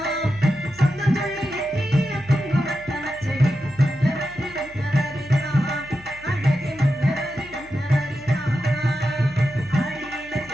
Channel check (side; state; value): left; noise; hum, 22 dB below the sound